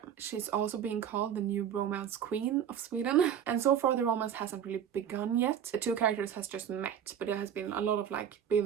She's also being called the new romance queen of Sweden, and so far the romance hasn't really begun yet. The 2 characters has just met, but it has been a lot of like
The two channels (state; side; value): quieter; left; 8.9 dB